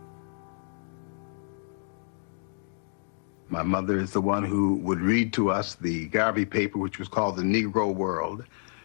My mother is the one who would read to us the Garvey paper, which was called the Negro World.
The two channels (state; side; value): silent; right; digital silence